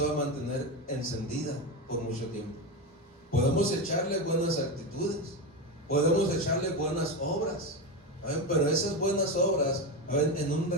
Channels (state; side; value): normal; both; correlation 0.16